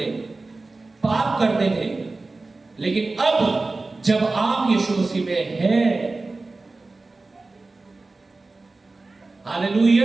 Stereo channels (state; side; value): quieter; left; 3.4 dB